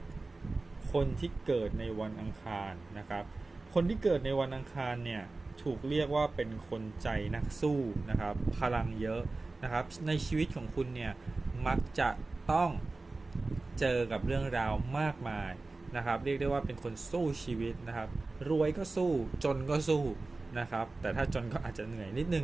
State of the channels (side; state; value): left; quieter; 3.4 dB